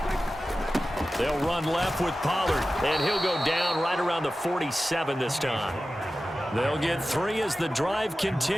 They'll run left with Pollard, and he'll go down right around the 47 this time. They'll get 3 as the drive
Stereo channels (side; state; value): both; normal; correlation 0.94